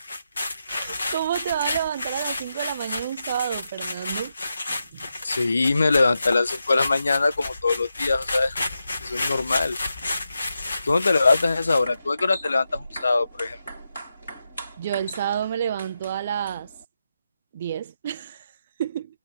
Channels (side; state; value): both; inverted; correlation -0.87